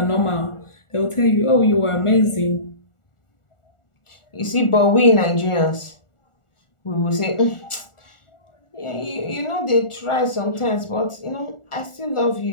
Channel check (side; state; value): right; late; 1.4 ms